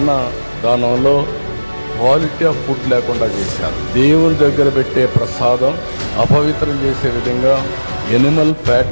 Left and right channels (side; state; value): both; inverted; correlation -1.00